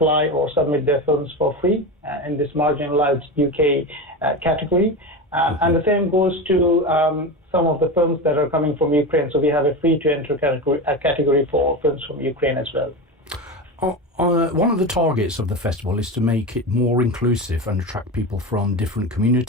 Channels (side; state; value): both; normal; correlation 0.22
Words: or submit their films for free in this marginalized UK category. And the same goes to some of the films that are coming from Ukraine. So we have a free-to-enter category for films from Ukraine as well. One of the targets of the festival is to make it more inclusive and attract people from different